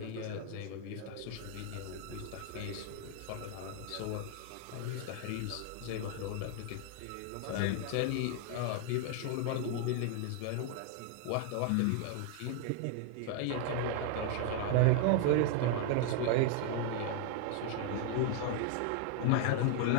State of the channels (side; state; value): both; different; correlation 0.00